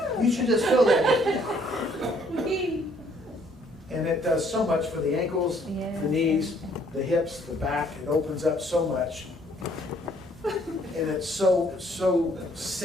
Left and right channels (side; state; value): both; normal; correlation 0.63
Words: You should just feel that. And it does so much for the ankles, Yeah. the knees, the hips, the back. It opens up so much. And it's so